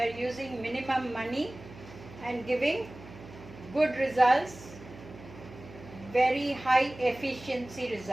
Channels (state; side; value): noise; right; hum, 17 dB below the sound